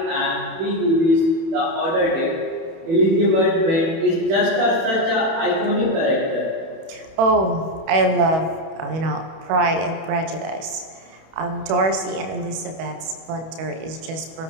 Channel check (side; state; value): left; late; 31 ms